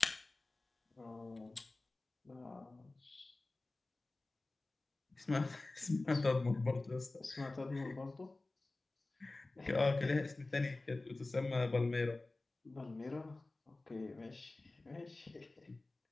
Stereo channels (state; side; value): quieter; right; 3.1 dB